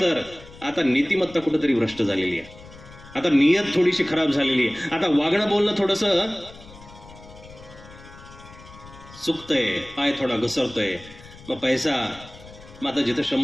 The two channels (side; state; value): left; noise; rumble, 20 dB below the sound